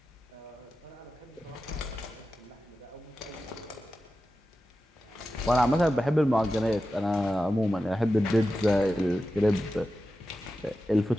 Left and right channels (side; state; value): both; normal; correlation 0.92